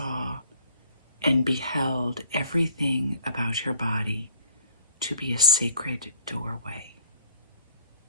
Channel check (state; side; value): inverted; both; correlation -0.56